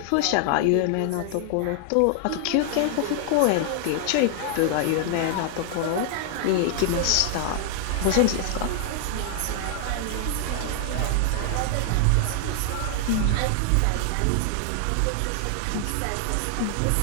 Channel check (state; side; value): different; both; correlation 0.00